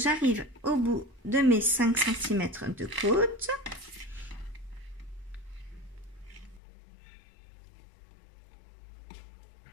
au bout de mes 5 cm de côte.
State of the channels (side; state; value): right; drops out; at 6.6 s